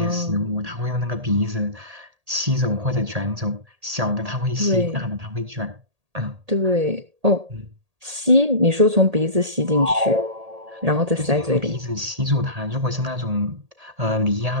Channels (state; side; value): late; left; 1.8 ms